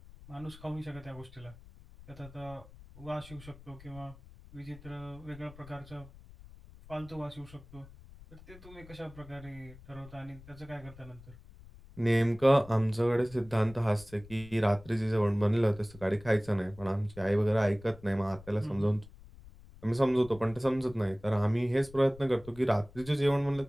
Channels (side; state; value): left; noise; rumble, 20 dB below the sound